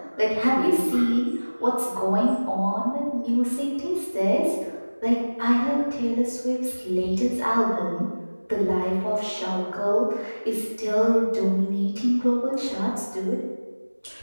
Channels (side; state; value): both; inverted; correlation -1.00